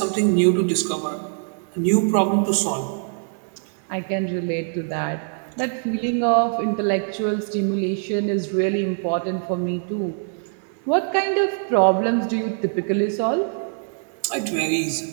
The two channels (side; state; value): left; silent; digital silence